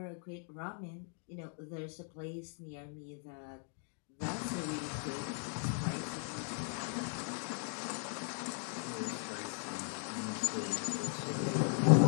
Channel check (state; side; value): silent; right; 52 dB below the other